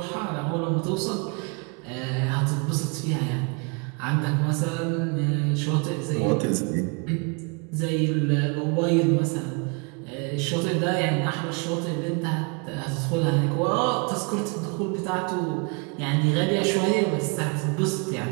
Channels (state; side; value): quieter; left; 32.7 dB